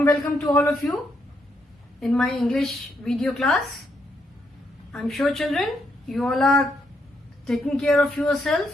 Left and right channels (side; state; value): both; normal; correlation 0.77